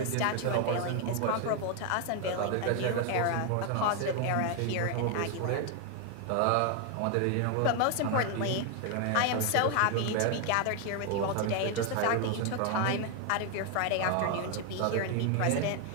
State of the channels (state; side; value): different; both; correlation 0.01